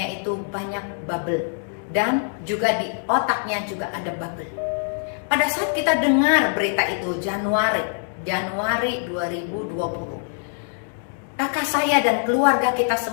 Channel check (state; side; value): silent; right; digital silence